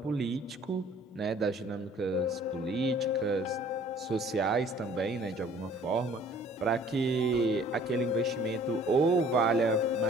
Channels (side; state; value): both; normal; correlation 0.53